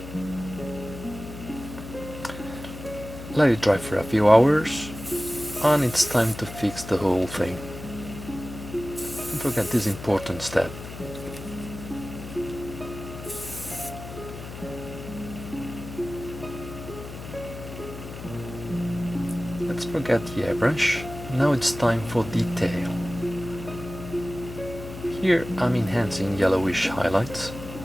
let it dry for a few hours, and it's time to fix the whole thing. Don't forget this important step. Let's forget the airbrush. Now it's time for detail. Here I'm enhancing yellowish highlights.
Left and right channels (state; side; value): noise; left; hum, 11 dB below the sound